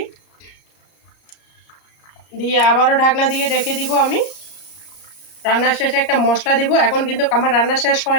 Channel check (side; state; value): right; late; 33 ms